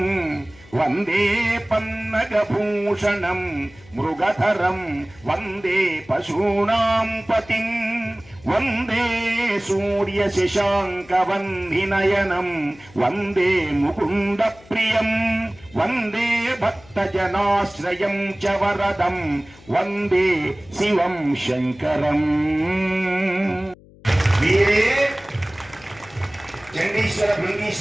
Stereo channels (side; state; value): left; noise; hum, 24 dB below the sound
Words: వందే పన్నగభూషణం మృగధరం, వందే పశూనాం పతిం, వందే సూర్య శశాంక వందినయనం, వందే ముకుంద ప్రియం, వందే భక్తజనాశ్రయం చ వరదం, వందే శివం శంకరం. వీరే చండీశ్వర